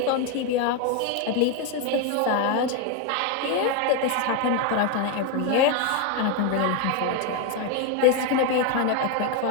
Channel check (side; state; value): both; different; correlation 0.02